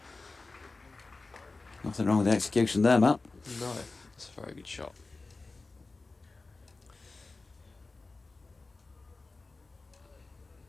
Nothing wrong with the execution there, Matt. No, it's a very good shot.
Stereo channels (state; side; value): quieter; right; 3.6 dB